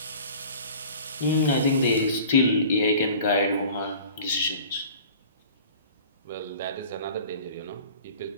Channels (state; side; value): inverted; both; correlation -0.44